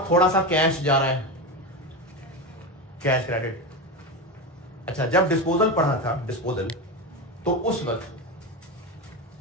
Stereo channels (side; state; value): both; normal; correlation 0.18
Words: थोड़ा सा कैश जा रहा है, कैश क्रेडिट। अच्छा, जब डिस्पोजल पढ़ा था डिस्पोजल, तो उस वक्त